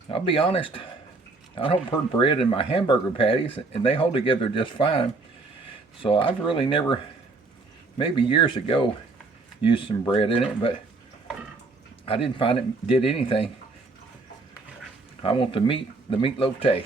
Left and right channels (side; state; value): left; quieter; 3.7 dB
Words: I'll be honest, I don't put bread in my hamburger patties, and they hold together just fine. So I've really never, maybe years ago, used some bread in it, but I didn't find it did anything. I want the meatloaf